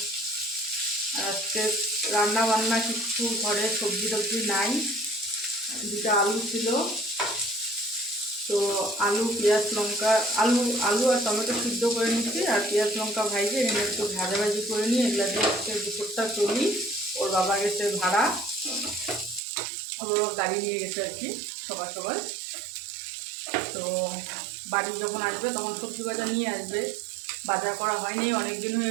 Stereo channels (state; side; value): drops out; left; at 19.4 s